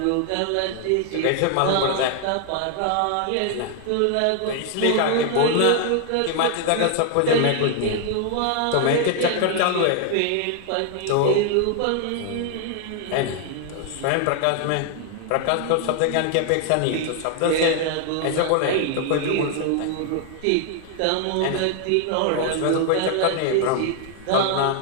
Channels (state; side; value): different; both; correlation 0.00